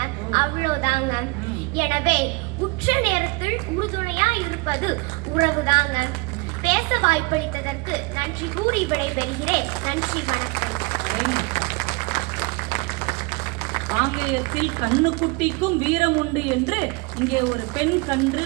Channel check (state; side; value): quieter; left; 27.2 dB